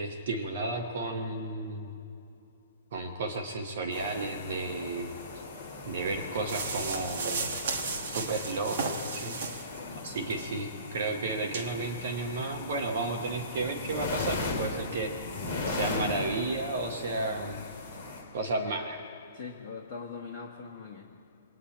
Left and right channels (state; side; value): inverted; both; correlation -0.43